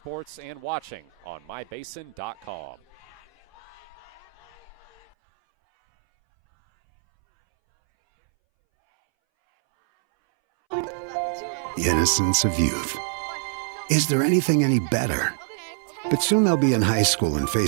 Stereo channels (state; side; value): drops out; left; at 5.2 s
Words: and watching on mybasin.com. The innocence of youth. Is there anything any better? But soon they'll be in high school and